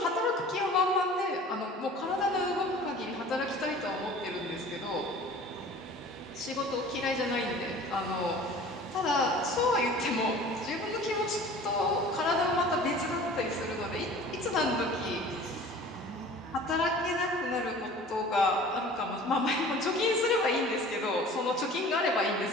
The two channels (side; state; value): both; normal; correlation 0.44